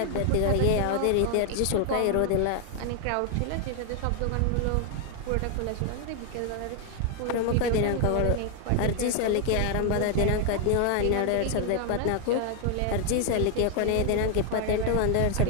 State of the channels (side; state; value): both; different; correlation 0.00